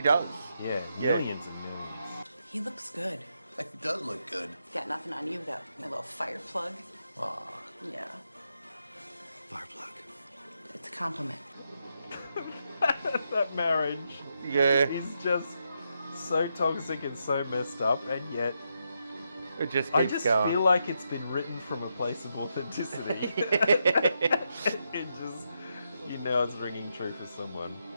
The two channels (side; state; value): both; inverted; correlation -0.82